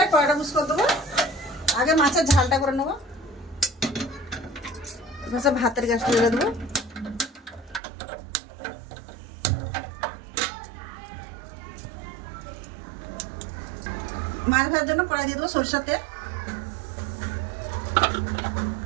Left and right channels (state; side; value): drops out; left; at 7.8 s